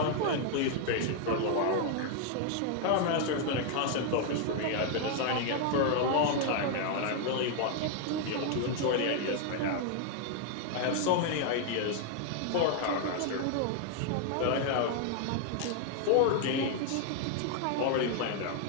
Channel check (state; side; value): different; both; correlation 0.00